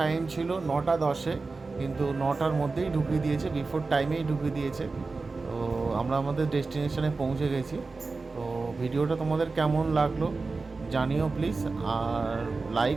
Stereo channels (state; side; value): quieter; left; 3.9 dB